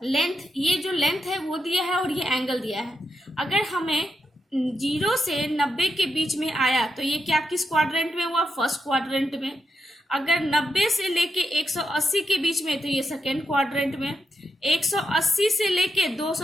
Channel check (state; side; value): normal; both; correlation 0.84